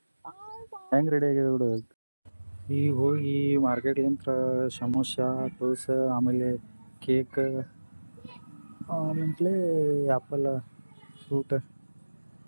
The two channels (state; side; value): inverted; both; correlation -1.00